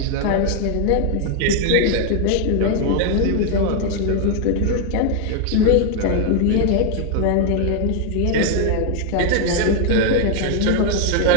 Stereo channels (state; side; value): different; both; correlation 0.00